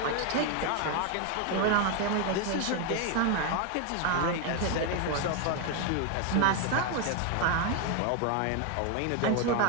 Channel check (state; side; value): different; both; correlation 0.01